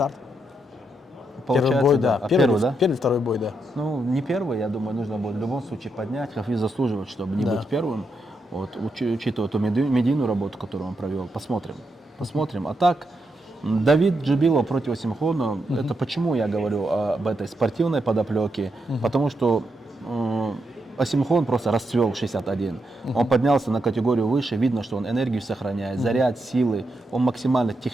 Первый бой, да. Первый, да? Первый, второй бой, да. Ну, не первый, я думаю, нужно будет в любом случае поднять. Хафиз заслуживает, чтобы не быть первым. Вот, учитывая ту медийную работу, которую он провел. Посмотрим. Посмотрим. А так, Давид Джибилов против Осимхона, это почему я говорю об этой спортивной подоплеке? Потому что Осимхон просто расцвел в 61. Он поднялся на категорию выше, видно, что он энергию сохраняет, заряд, силы, он максимально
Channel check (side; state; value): both; normal; correlation 0.82